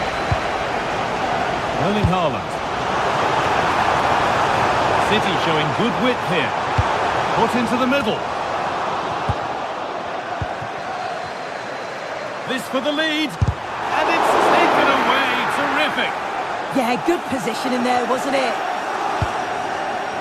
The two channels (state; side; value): identical; both; correlation 1.00